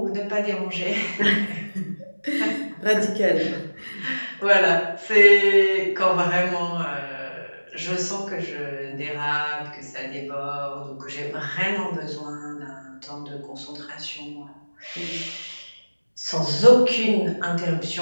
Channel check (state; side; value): inverted; both; correlation -1.00